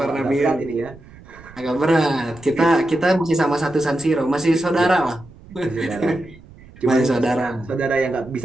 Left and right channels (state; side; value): noise; right; rumble, 21 dB below the sound